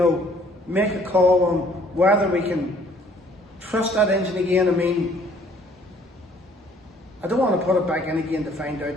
make a call on whether we can trust that engine again. I mean, I don't want to put it back in again to find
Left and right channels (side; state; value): both; normal; correlation 0.59